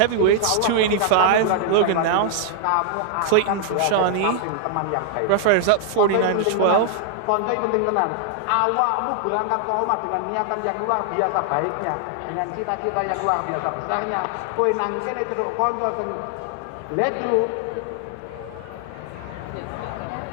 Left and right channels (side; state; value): both; different; correlation 0.00